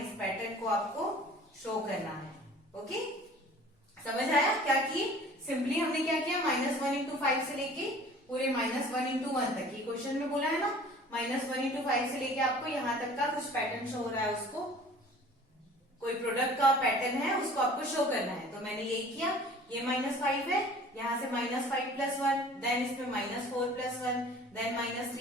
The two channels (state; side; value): normal; both; correlation 0.47